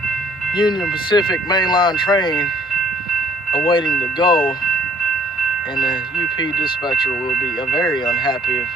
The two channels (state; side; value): normal; both; correlation 0.59